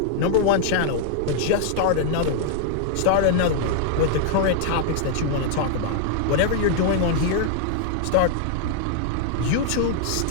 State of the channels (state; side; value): different; both; correlation -0.01